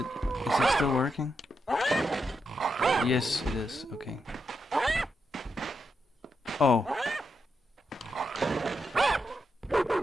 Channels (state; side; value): normal; both; correlation 0.84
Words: still working? Yes, it is. Okay. Oh.